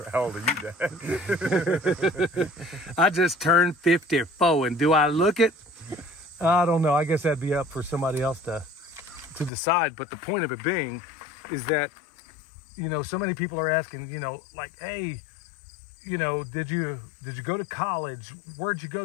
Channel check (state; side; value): drops out; right; at 9.5 s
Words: old are you, Dad? I just turned 54, and do I look it? I don't know. I guess that'd be up for somebody else to decide. But the point of it being is that, so many people are asking, like, hey, did you go to college? Where'd you go